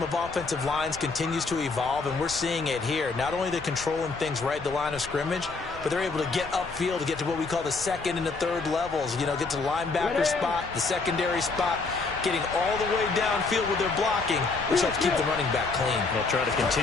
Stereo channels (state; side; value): quieter; right; 4.0 dB